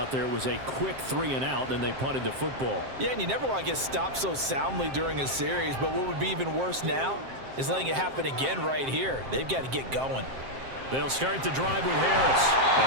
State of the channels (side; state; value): left; late; 7.6 ms